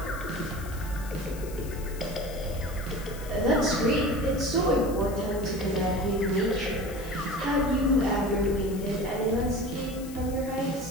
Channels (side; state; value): left; noise; hiss, 17 dB below the sound